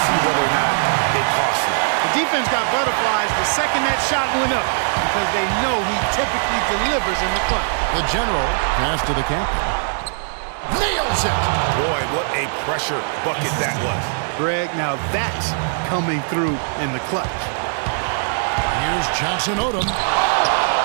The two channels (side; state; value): left; silent; digital silence